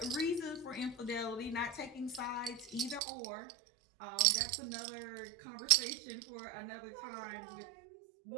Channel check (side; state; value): left; drops out; at 3.0 s